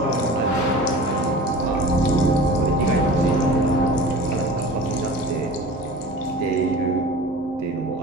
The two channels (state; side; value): normal; both; correlation 0.38